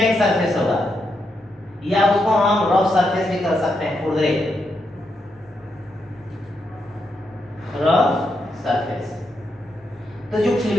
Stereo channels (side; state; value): both; normal; correlation 0.82